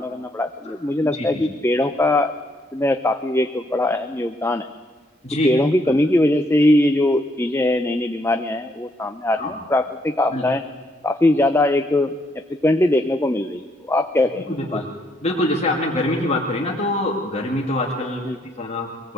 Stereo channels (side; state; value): both; normal; correlation 0.72